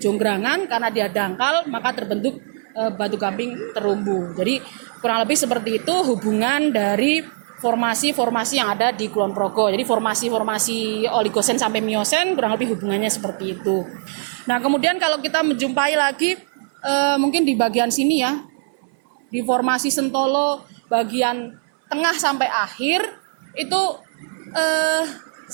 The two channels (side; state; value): left; silent; 60 dB below the other